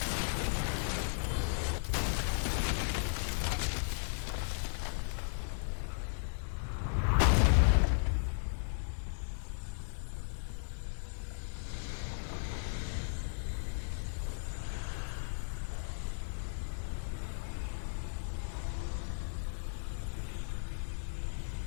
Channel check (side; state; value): right; silent; 54 dB below the other